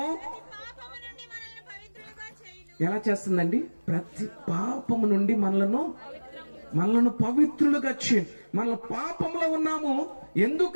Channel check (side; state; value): both; inverted; correlation -1.00